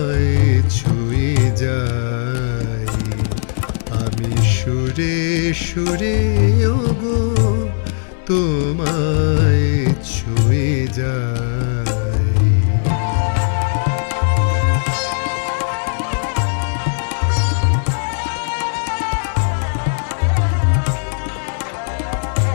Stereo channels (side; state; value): right; silent; digital silence